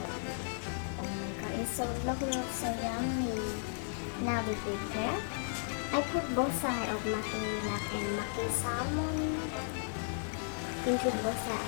Oh my god, it's so look so yummy. Now we prepare. I put both sides of maki lab and maki salmon into both sides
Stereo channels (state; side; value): silent; right; digital silence